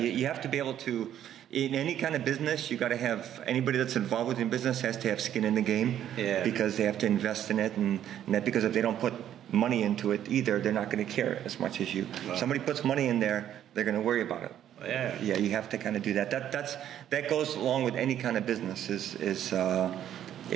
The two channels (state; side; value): quieter; left; 10.8 dB